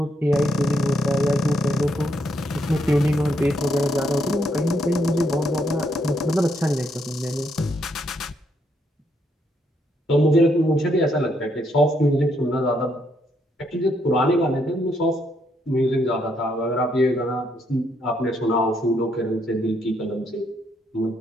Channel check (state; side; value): normal; both; correlation 0.75